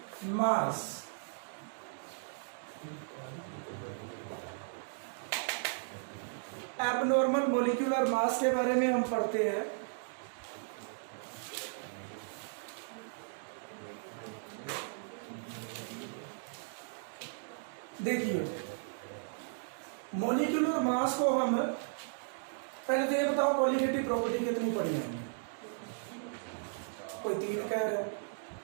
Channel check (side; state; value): left; silent; digital silence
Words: mass. Abnormal molecular mass के बारे में हम पढ़ते हैं। देखिए मॉलिक्यूलर मास को हम पहले तो ये बताओ क्वालिटेटिव प्रॉपर्टी कितनी पढ़ी है हमने? कोई 3 कह रहा है,